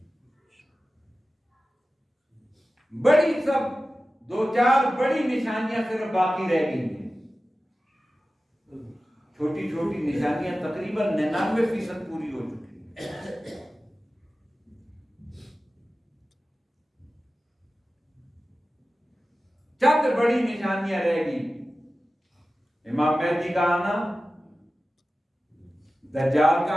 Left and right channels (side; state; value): both; normal; correlation 0.95